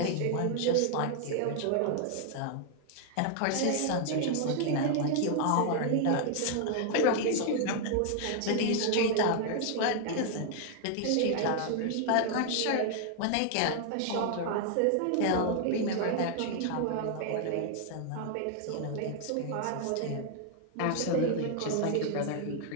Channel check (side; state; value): both; different; correlation 0.00